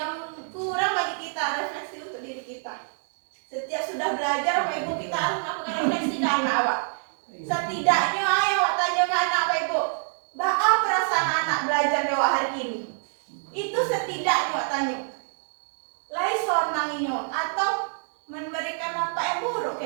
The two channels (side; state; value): left; silent; 61 dB below the other